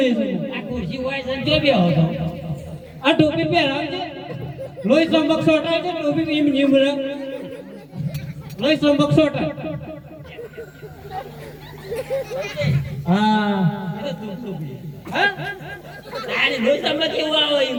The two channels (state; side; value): identical; both; correlation 1.00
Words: છે આ ખુરશી હોય છે જો બે હતો આ ટોપી પહેરાવજે લોહી ચમક સોટાય છે ટોપી એમ નીમ લોહી ચમક સોટાય હા હા તારે રોજ તમને કેવું આવે એમ